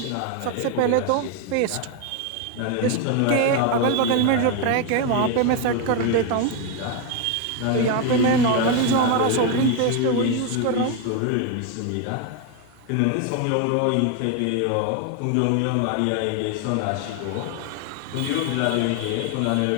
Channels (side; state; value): both; different; correlation 0.01